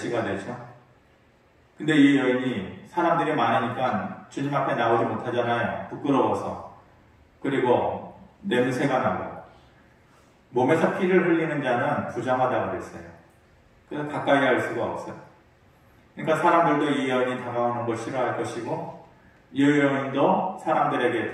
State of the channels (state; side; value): identical; both; correlation 1.00